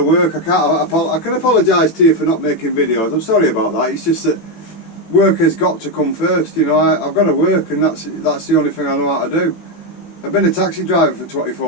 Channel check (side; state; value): right; late; 18 ms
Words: work. I can apologise to you for not making videos. I'm sorry about that. It's just that work has got to come first. You know, I've got to work, and that's the only thing I know how to do. I've been a taxi driver for